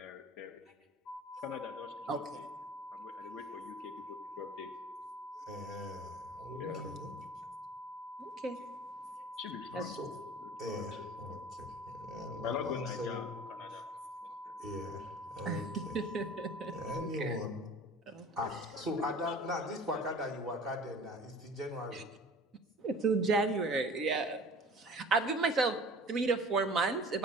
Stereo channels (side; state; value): both; normal; correlation 0.44